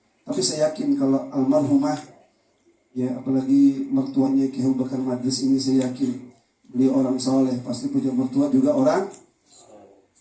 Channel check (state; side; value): identical; both; correlation 1.00